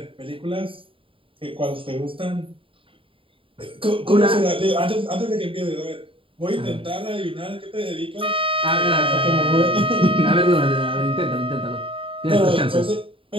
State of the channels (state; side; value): late; left; 0.26 ms